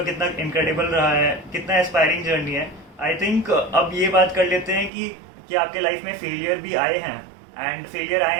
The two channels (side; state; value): left; drops out; at 4.9 s